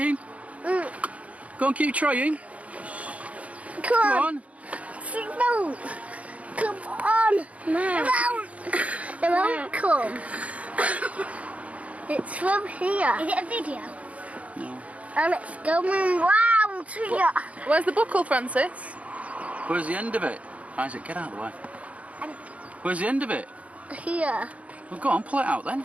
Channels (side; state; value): left; late; 0.066 ms